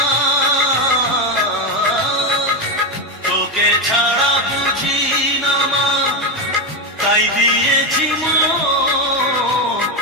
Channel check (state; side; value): normal; both; correlation 0.11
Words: তোকে ছাড়া বুঝি না মা, তাই দিয়েছি মন।